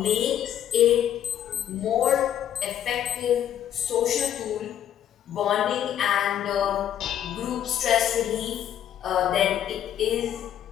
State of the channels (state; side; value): quieter; right; 10.5 dB